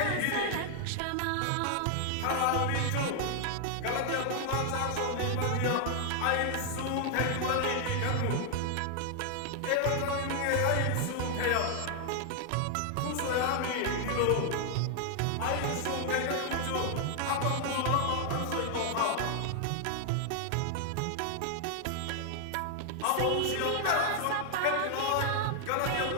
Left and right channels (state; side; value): different; both; correlation 0.00